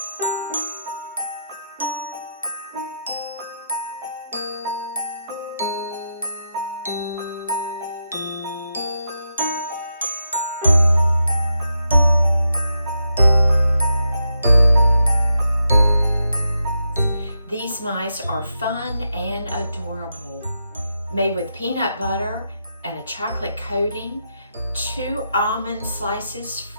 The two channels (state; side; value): inverted; both; correlation -0.84